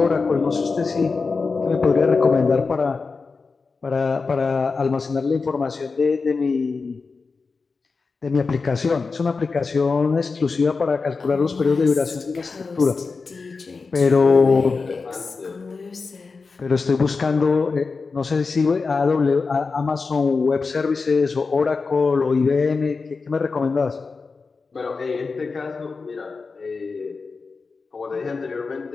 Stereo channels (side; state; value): right; quieter; 4.5 dB